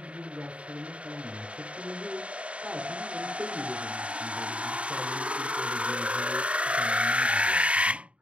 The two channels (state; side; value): late; left; 0.062 ms